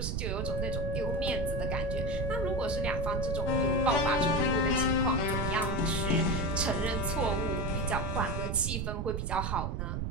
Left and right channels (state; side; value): noise; right; rumble, 1 dB below the sound